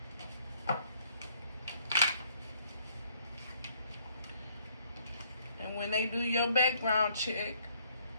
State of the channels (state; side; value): inverted; both; correlation -0.65